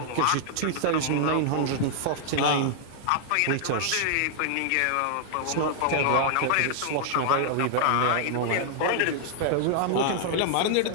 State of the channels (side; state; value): both; different; correlation -0.01